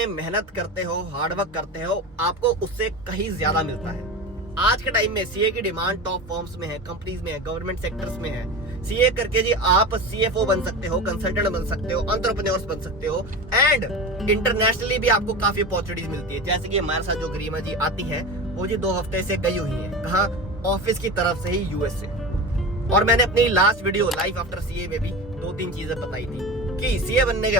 मेहनत करते हो, हार्डवर्क करते हो, आपको उससे कहीं ज्यादा मिलता है। आज के टाइम में सीए की डिमांड टॉप फर्म्स में है, कंपनीज में है, गवर्नमेंट सेक्टर्स में है। सीए करके जी आप सीएफओ बन सकते हो, कंसल्टेंट बन सकते हो, एंटरप्रेन्योर्स बन सकते हो। एंड इंटरनेशनली भी आपको काफी अपॉर्चुनिटीज मिलती है। जैसे कि हमारे साथ जो गरिमा जी आती है, वो जी 2 हफ्ते से गई हुई है, कहाँ, ऑफिस की तरफ से ही, यूएस से। और मैंने अपनी last video life after CA में भी 2-3 चीजें बताई थी कि सीए बनने के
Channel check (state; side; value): normal; both; correlation 0.28